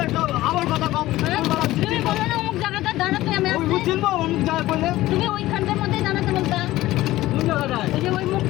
আমার কথা কম। তুমি বলো না অমুক জায়গাটা দাঁড়াতে আমি ওই আসছি। বুঝছেন তো অমুক জায়গায় বলে তুমি ওইখানটার মধ্যেই দাঁড়াতে বলতা। কোন জায়গাটায়? ওই যে ওই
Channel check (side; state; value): right; quieter; 16.5 dB